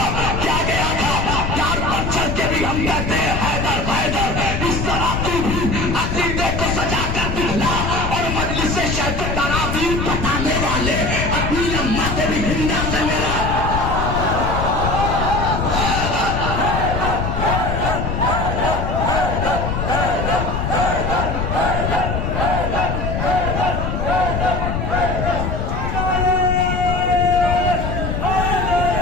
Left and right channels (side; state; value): left; noise; rumble, 2 dB below the sound